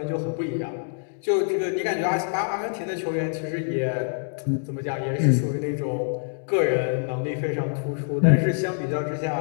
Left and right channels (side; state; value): right; silent; digital silence